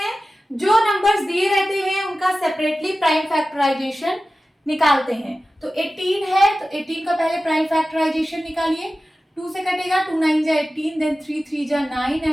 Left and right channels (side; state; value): both; normal; correlation 0.95